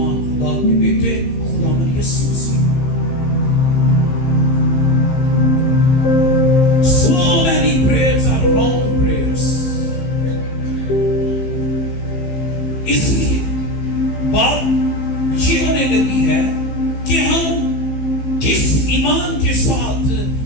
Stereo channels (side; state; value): right; late; 15 ms